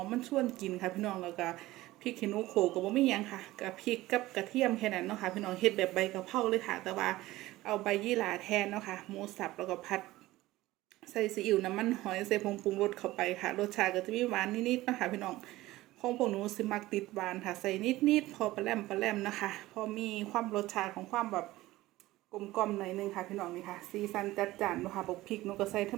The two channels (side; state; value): left; quieter; 17.5 dB